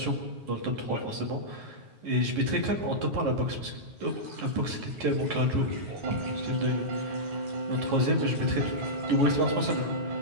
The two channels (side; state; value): left; late; 9.3 ms